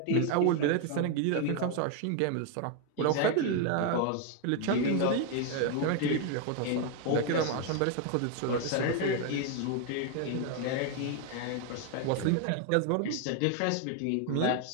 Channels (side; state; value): both; different; correlation 0.01